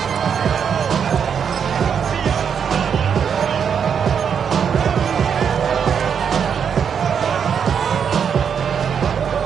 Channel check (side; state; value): left; quieter; 7.3 dB